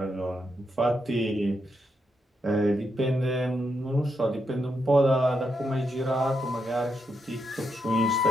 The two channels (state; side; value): normal; both; correlation 0.82